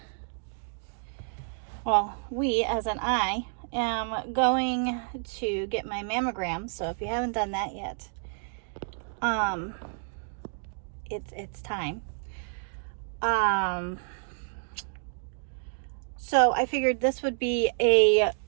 we as in I, am going to get my mammogram. So if you haven't done that yet, um, it's time. Um, so I figured this would be a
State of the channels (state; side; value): silent; left; digital silence